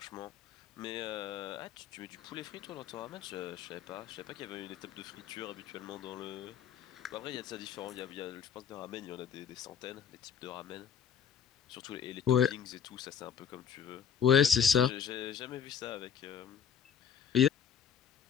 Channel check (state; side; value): quieter; right; 7.9 dB